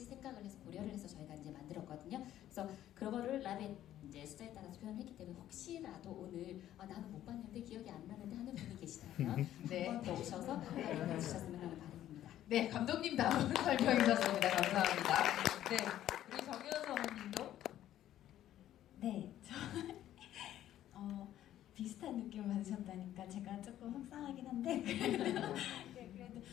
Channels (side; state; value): right; quieter; 12.3 dB